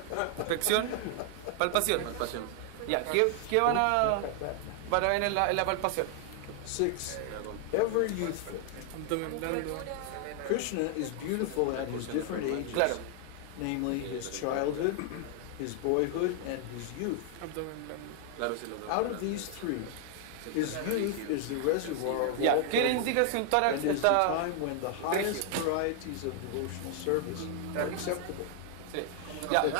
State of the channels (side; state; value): both; different; correlation 0.00